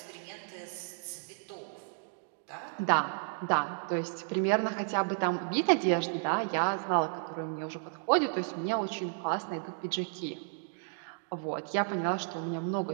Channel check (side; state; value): left; silent; digital silence